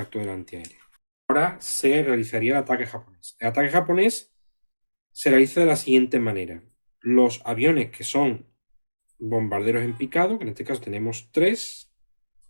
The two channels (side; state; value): both; inverted; correlation -1.00